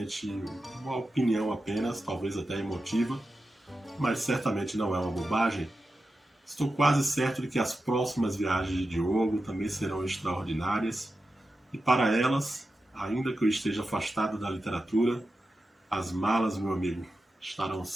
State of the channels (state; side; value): normal; both; correlation 0.91